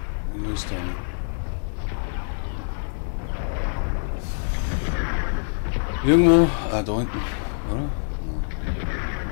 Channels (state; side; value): silent; right; digital silence